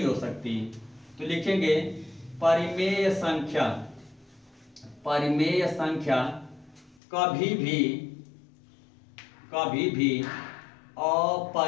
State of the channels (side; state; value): right; drops out; at 7.0 s